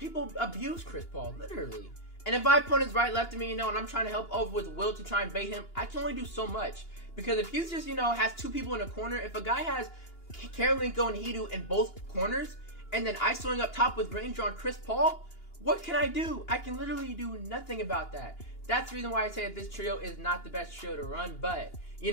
abuse Chris Paul, literally. And if my opponent's right, left of me, you know, and I'm trying to help over with Will to try and bait him, I can only do so much. Because if he's just, you know, has 2 people in a corner, if a guy has Karolinko and Hiru in both corners, and then I swing up top with Granger on Chris Paul, what can I do? I can literally do nothing about that. That's the reason why I say that this trio is not the best trio to run. But, you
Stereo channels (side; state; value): right; late; 2.9 ms